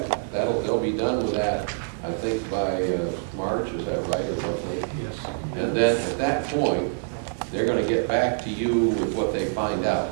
they'll be done with that, I think, by March, is that right, or roughly? Yes. And then at that point, they're going to get back to you with what they find out.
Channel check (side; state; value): left; silent; digital silence